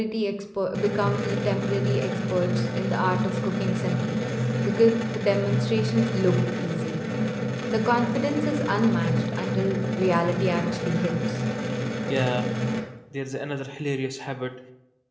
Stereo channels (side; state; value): both; identical; correlation 1.00